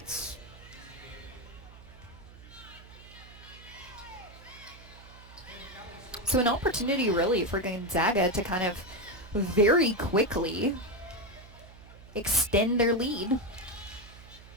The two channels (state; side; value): noise; right; hum, 19 dB below the sound